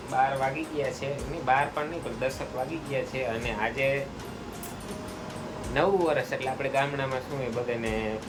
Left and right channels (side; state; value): both; identical; correlation 1.00